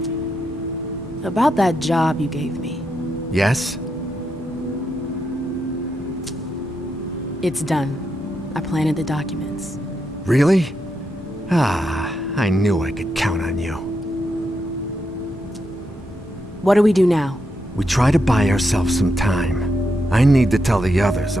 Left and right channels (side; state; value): both; normal; correlation 0.83